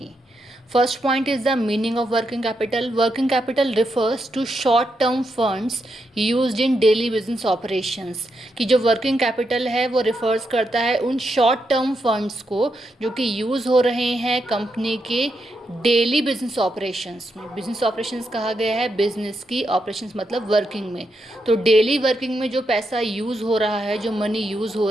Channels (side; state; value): both; normal; correlation 0.83